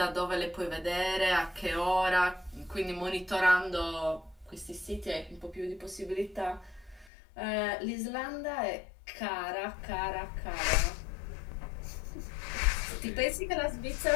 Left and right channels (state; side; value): drops out; right; at 7.1 s